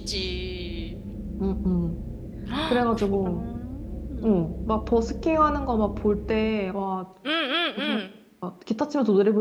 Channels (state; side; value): identical; both; correlation 1.00